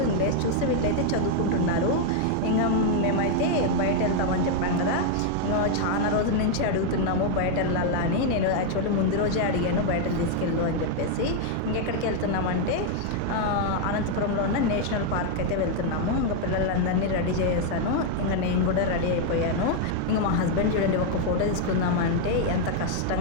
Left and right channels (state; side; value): different; both; correlation 0.00